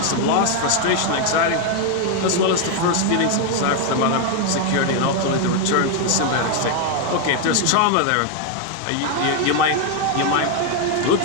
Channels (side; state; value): both; different; correlation 0.01